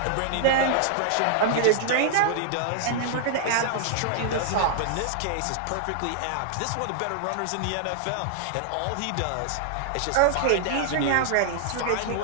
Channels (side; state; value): both; different; correlation -0.01